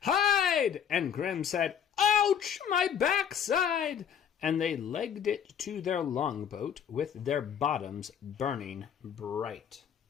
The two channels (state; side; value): quieter; right; 8.2 dB